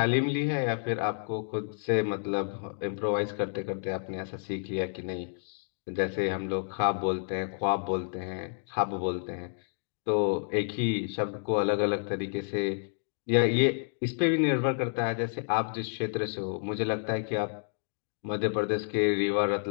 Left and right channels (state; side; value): silent; right; digital silence